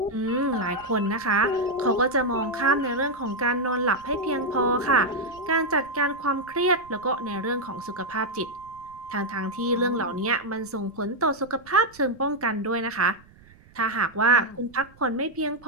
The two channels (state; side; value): noise; right; rumble, 26 dB below the sound